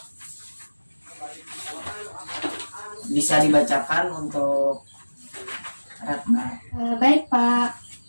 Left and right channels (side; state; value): both; inverted; correlation -1.00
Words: bisa dibacakan untuk Ratna. Baik Pak,